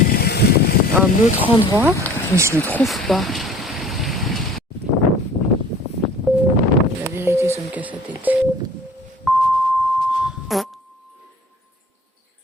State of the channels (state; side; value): normal; both; correlation 0.47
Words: un autre endroit, mais je ne le trouve pas. La vérité, ça me casse la tête.